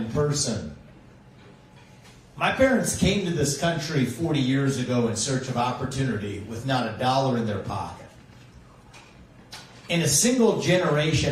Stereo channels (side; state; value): both; identical; correlation 1.00